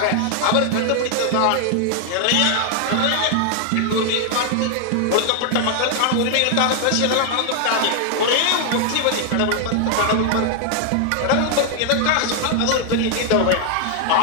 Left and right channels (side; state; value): both; different; correlation 0.00